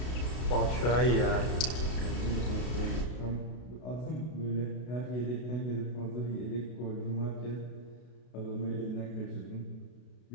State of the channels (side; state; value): right; late; 32 ms